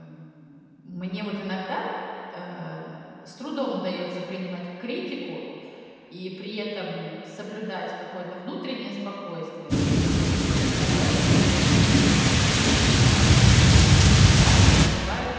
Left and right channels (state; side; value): identical; both; correlation 1.00